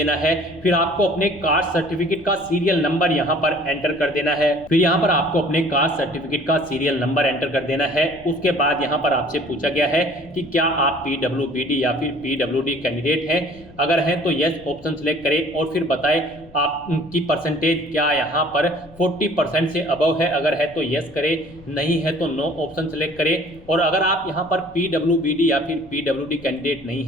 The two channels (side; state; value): left; noise; rumble, 22 dB below the sound